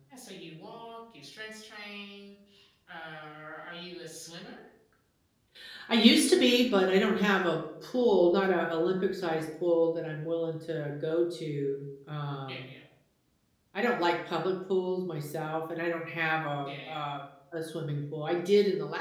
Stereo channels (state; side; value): identical; both; correlation 1.00